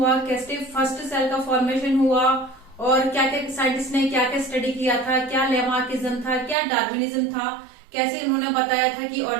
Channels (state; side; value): drops out; left; at 6.6 s